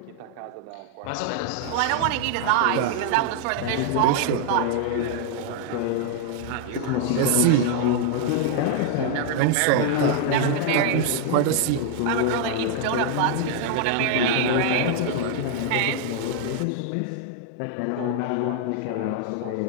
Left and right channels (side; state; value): both; different; correlation 0.00